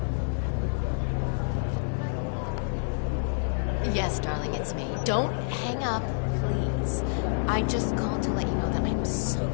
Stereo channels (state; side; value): silent; right; 59 dB below the other